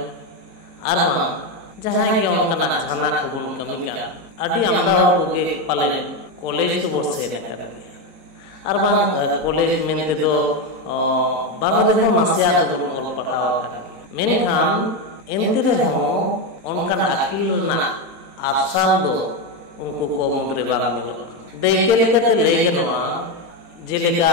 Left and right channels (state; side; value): late; left; 23 ms